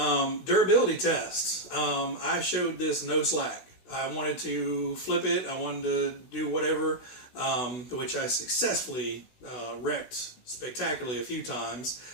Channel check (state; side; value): late; right; 16 ms